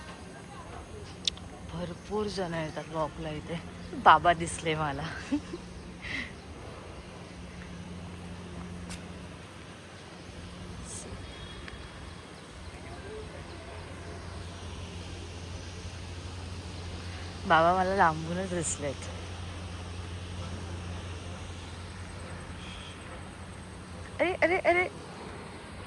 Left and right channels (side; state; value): both; identical; correlation 1.00